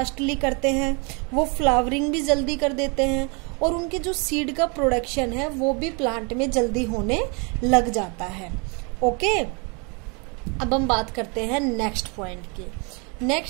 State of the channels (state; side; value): quieter; left; 33.0 dB